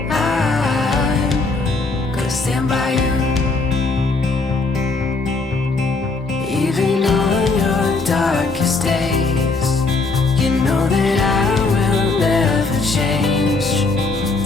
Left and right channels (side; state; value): right; quieter; 3.7 dB